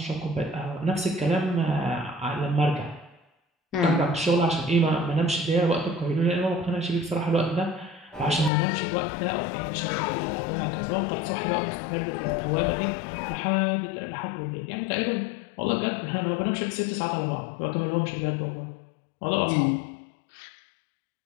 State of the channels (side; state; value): right; drops out; at 8.5 s